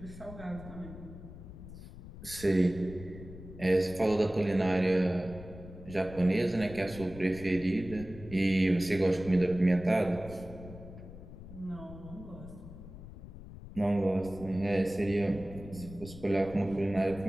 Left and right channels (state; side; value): noise; left; rumble, 14 dB below the sound